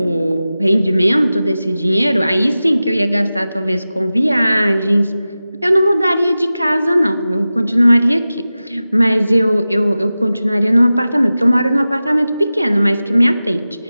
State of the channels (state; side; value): inverted; both; correlation -0.95